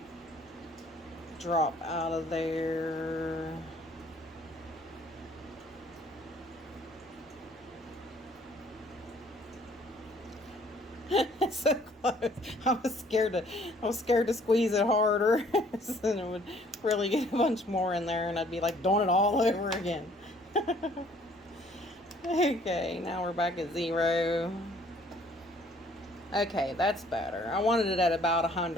drop out of there. So close. I was scared to squeeze it harder. And it would really get a bunch more in there and I'd be like doing it all over again. Okay, now we're back at 0. Okay, that's better. I wanted it at about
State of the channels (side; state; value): both; normal; correlation 0.59